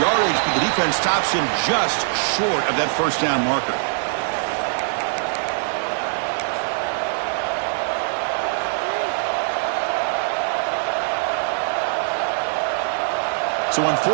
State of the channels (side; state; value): left; silent; digital silence